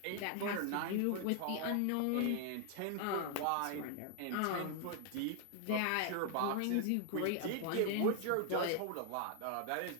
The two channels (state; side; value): different; both; correlation 0.00